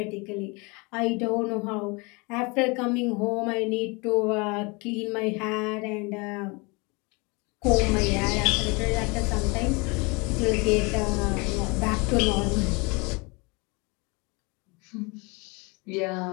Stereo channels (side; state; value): right; quieter; 28.3 dB